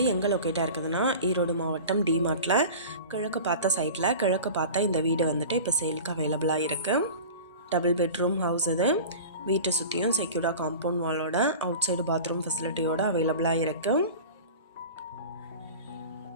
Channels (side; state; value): both; inverted; correlation -0.36